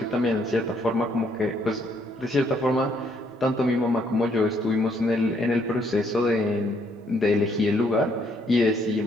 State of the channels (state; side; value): normal; both; correlation 0.70